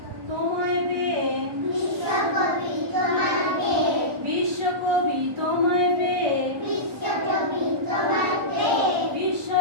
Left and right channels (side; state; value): left; late; 1.2 ms